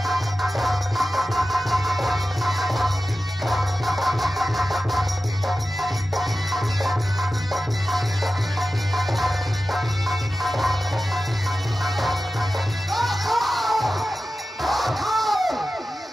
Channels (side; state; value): both; normal; correlation 0.94